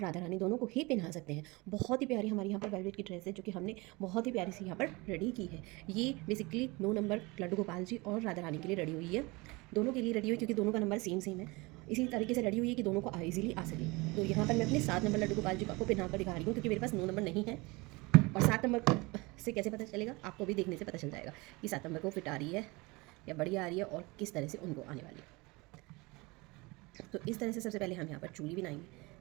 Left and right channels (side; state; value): left; quieter; 24.7 dB